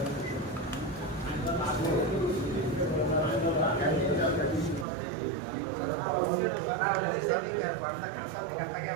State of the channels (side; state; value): left; drops out; at 4.9 s